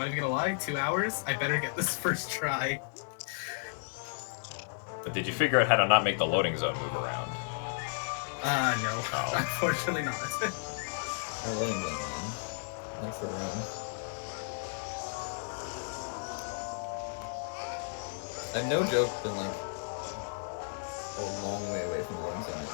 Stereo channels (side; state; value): right; silent; 56 dB below the other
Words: even gonna lie, 2 hours. I better get this first try. But did you figure out how to not make the loading zone move around? No. Oh. Unfortunately not. I'm letting them in. Thanks for the room. I've no joke been like a long way away from the loading zone and